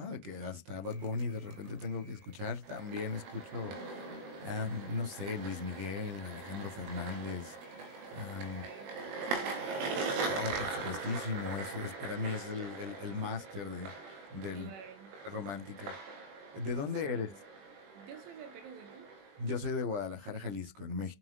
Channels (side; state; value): left; late; 20 ms